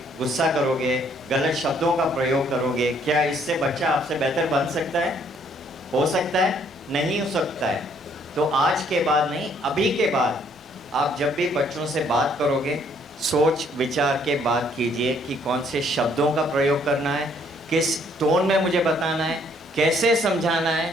गुस्सा करोगे, गलत शब्दों का प्रयोग करोगे। क्या इससे बच्चा आपसे बेहतर बन सकता है? हो सकता है? नहीं हो सकता है। तो आज के बाद नहीं, अभी के बाद आप जब भी बच्चों से बात करोगे, सोच विचार के बात कीजिए कि कौन से शब्दों का प्रयोग करना है, किस टोन में मुझे बताना है, कैसे समझाना है,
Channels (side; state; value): both; normal; correlation 0.65